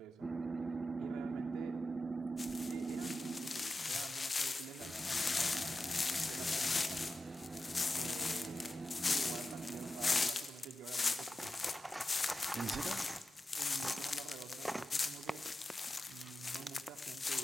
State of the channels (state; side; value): normal; both; correlation 0.91